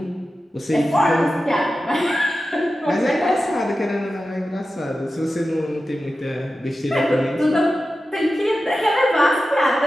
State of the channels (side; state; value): both; normal; correlation 0.93